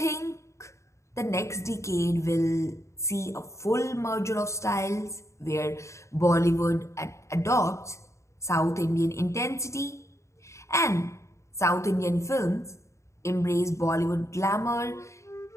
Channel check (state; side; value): late; right; 0.14 ms